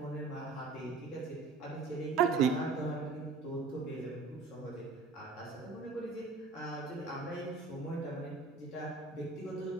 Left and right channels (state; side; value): quieter; left; 4.1 dB